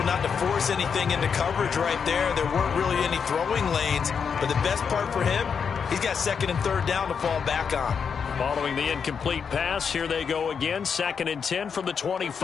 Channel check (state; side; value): quieter; right; 6.5 dB